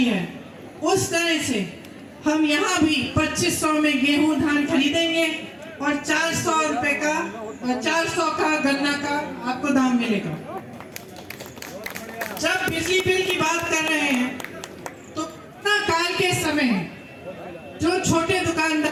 है, उस तरह से हम यहाँ भी 2500 में गेहूं धान खरीदेंगे और 400 रुपए का 400 का गन्ना का आपको दाम मिलेगा। जब बिजली बिल की बात कर रहे हैं तो कोरोना काल के समय जो छोटे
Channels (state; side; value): identical; both; correlation 1.00